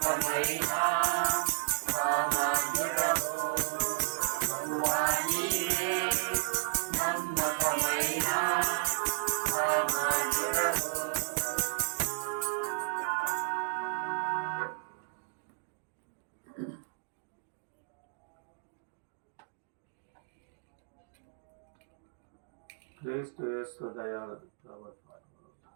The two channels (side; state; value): left; silent; digital silence